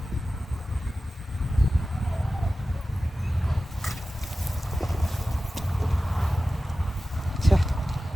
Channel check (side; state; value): both; normal; correlation 0.95